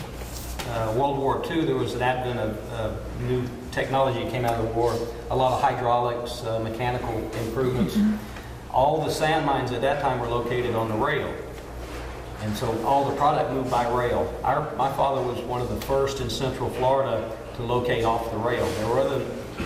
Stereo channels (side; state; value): both; identical; correlation 1.00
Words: World War II. There was an advent of new technology that came out of the war, a lot of hydraulics, mechanical improvements. All the sand mines at that time were located on the rail, and so all the product moved by rail. My father was one of the first in Central Florida to locate off the rail. There were other